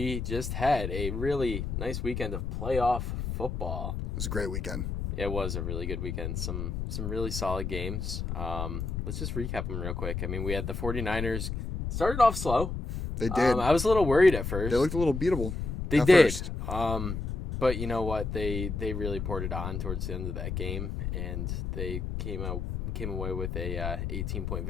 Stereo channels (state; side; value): noise; left; rumble, 3 dB below the sound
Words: just had a really nice weekend of playoff football. It was a great weekend. It was a really good weekend. Some really solid games. Let's just recap them real quick. I mean, we had the 49ers started off slow. They did. I was a little worried at first. They looked a little beatable. They at did. First. But you know what? They really poured it on towards the end of that game, and they came away with a 18-point